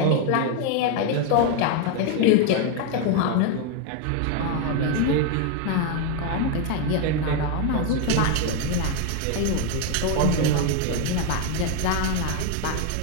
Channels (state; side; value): different; both; correlation 0.01